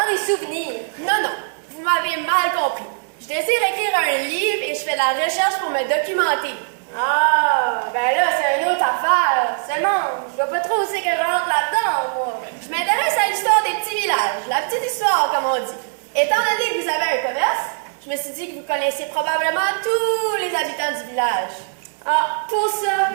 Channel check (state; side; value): silent; left; digital silence